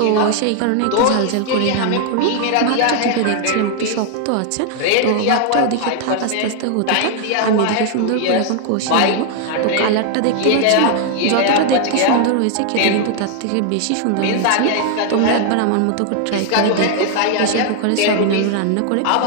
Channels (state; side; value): different; both; correlation 0.00